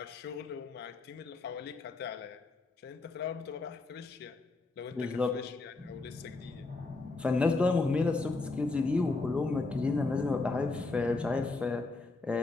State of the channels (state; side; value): quieter; right; 3.5 dB